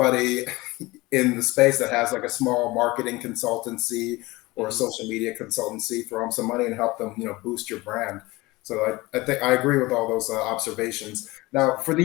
in the space that has like a small marketing consultancy or a Mm-hmm. social media consultancy, throw them some money and help them boost your brand. So I think I agree with all those observations. Now, for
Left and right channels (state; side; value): quieter; right; 21.4 dB